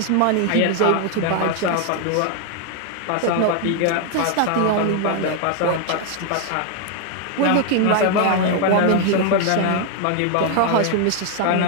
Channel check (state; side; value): different; both; correlation 0.00